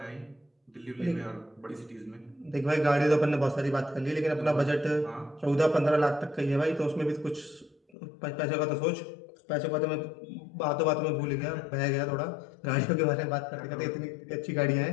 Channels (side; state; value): right; drops out; at 7.8 s